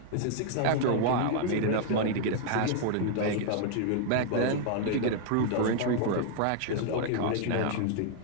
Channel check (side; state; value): both; different; correlation -0.01